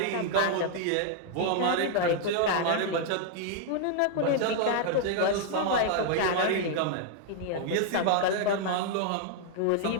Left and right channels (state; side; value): different; both; correlation 0.00